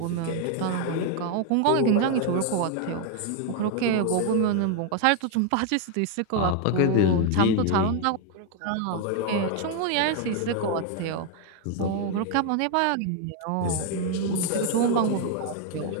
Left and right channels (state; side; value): different; both; correlation 0.01